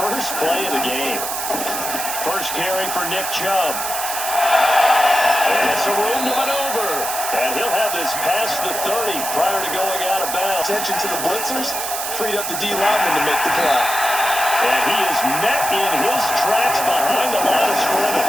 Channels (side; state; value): right; noise; hiss, 4 dB below the sound